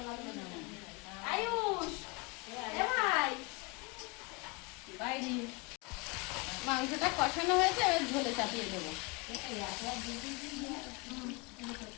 আয়ুষ এ ভাই বাইরে মাংসটা কষানো হয়েছে এবার ঝোলে চাপিয়ে দেবো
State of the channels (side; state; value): right; quieter; 27.7 dB